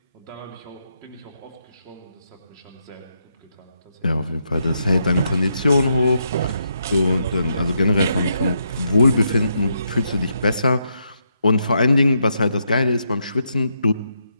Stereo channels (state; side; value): inverted; both; correlation -0.80